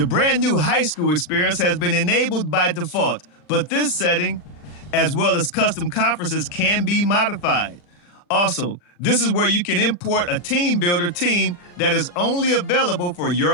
brand new high school experience has been enabled by default, but this setting, as well as custom conferences, can be modified. Also, this is where you can import a team builder team that is only available for your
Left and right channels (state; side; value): late; right; 40 ms